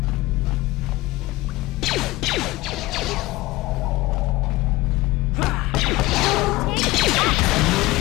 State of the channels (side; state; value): right; quieter; 19.6 dB